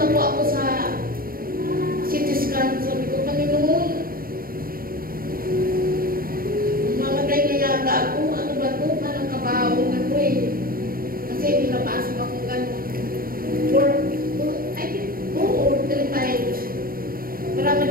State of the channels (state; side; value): late; left; 0.42 ms